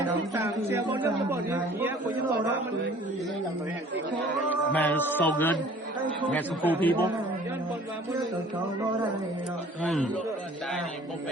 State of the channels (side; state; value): both; normal; correlation 0.51